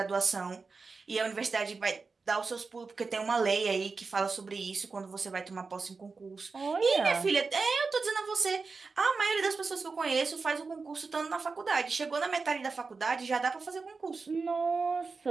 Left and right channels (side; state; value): left; quieter; 4.4 dB